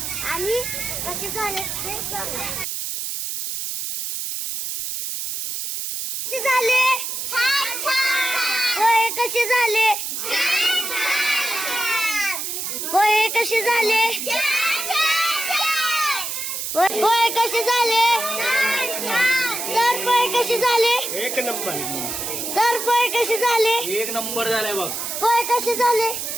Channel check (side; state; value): right; noise; hiss, 4 dB below the sound